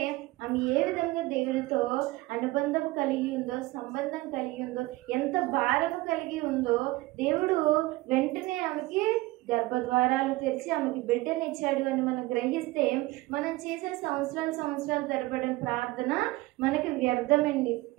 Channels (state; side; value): quieter; left; 20.3 dB